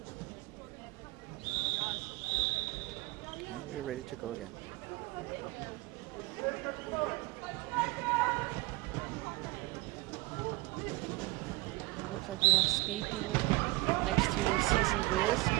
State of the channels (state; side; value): quieter; left; 21.9 dB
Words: And we're ready to go again. Looks like we have Speed Demon next to CC Wiz